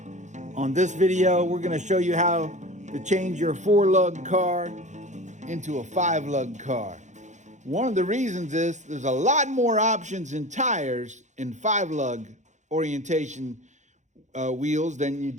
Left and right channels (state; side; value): late; left; 0.35 ms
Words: On this video, we're going to show you how to change your 4-lug car into a 5-lug car. One of the reasons is there's a lot more options in tires in 5-lug orientation wheels than you